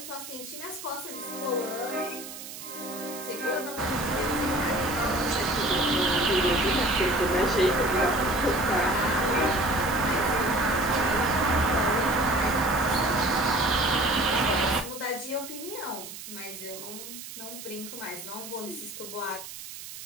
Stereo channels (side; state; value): right; noise; hiss, 12 dB below the sound